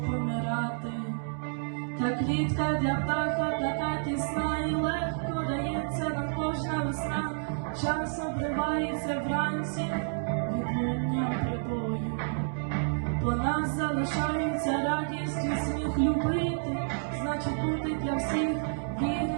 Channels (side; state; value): left; silent; digital silence